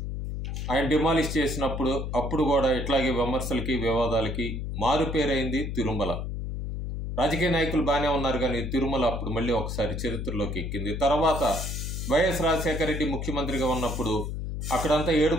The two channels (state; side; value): noise; left; hum, 4 dB below the sound